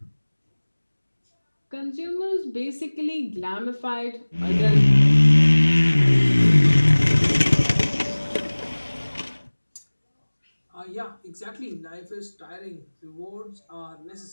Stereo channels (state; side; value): inverted; both; correlation -1.00